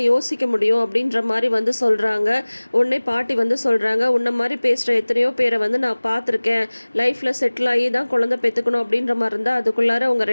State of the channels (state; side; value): inverted; both; correlation -1.00